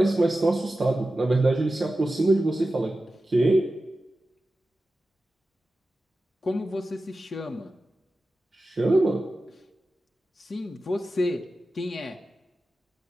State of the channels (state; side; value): normal; both; correlation 0.94